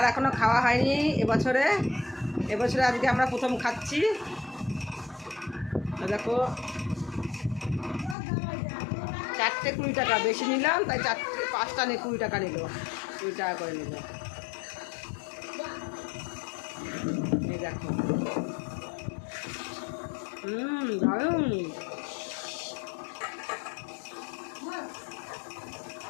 এখনো খাওয়া হয়নি এবছরে। এবছরে আজকে আমরা প্রথম খাচ্ছি। দেখো, 4টে 20 টাকা, বেশি নিলাম তাই 5টা নিয়ে 20 টাকা নিল, 20 টাকা করে নিল। এই দেখো, দারুণ।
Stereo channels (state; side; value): drops out; right; at 8.2 s